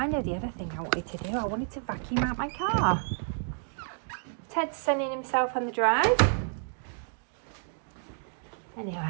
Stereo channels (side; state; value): left; silent; 58 dB below the other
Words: know the other thing I wanted to do. I wanted to vacuum out my car. Ted's sunning himself on the drive.